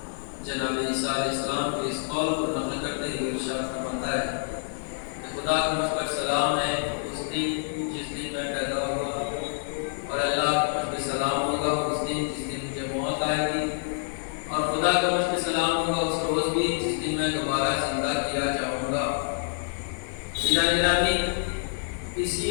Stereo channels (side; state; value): right; silent; digital silence